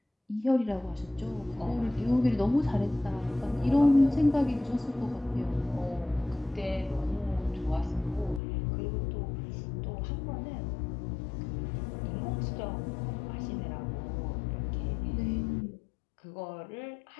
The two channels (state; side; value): drops out; right; at 8.4 s